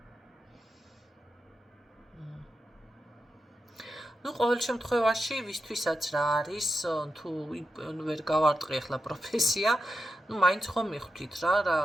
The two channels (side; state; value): both; normal; correlation 0.88